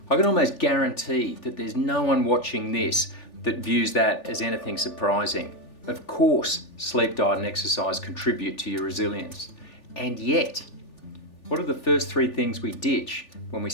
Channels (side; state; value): right; late; 3.4 ms